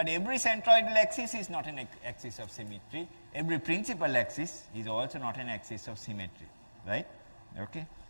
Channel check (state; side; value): inverted; both; correlation -1.00